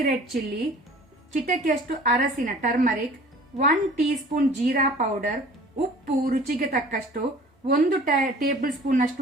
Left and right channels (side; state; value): both; normal; correlation 0.47